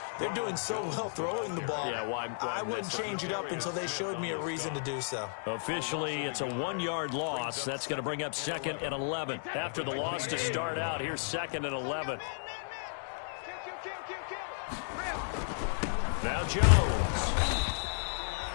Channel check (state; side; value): silent; right; digital silence